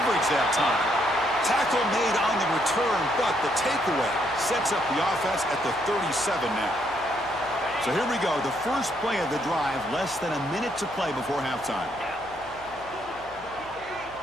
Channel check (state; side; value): noise; left; hum, 23 dB below the sound